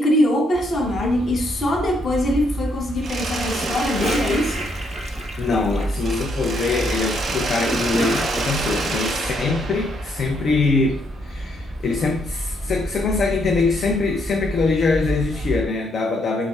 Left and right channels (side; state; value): both; normal; correlation 0.74